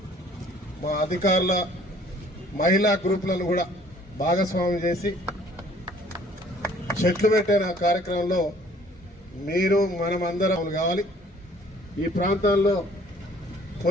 మా అధికారుల మహిళా గ్రూపులను కూడా భాగస్వామ్యం చేసి చెట్లు పెట్టిన కార్యక్రమంలో మీరు మనమందరం కావాలి. ఈ ప్రాంతాల్లో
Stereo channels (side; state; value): both; normal; correlation 0.56